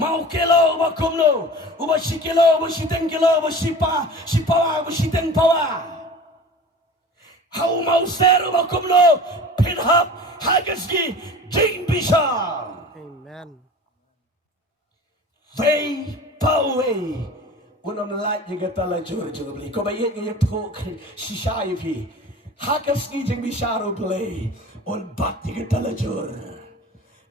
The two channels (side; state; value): both; normal; correlation 0.38